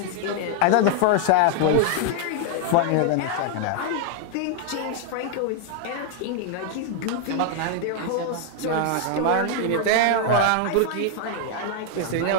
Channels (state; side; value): different; both; correlation 0.00